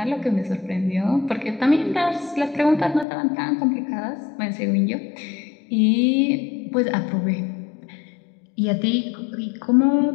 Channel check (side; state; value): right; drops out; at 3.1 s